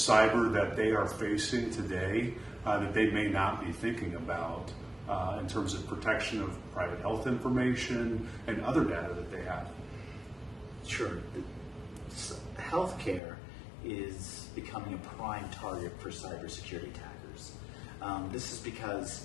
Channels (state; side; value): drops out; right; at 13.2 s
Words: that they are facing today that they may not be thinking about in terms of protection of private health information and other data that they have. Sure. Healthcare is becoming a prime target for cybersecurity attackers. This is